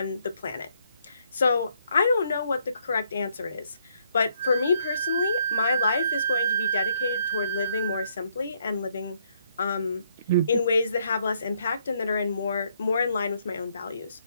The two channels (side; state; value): both; inverted; correlation -0.70